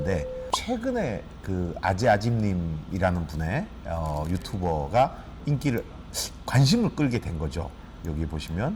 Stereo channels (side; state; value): both; identical; correlation 1.00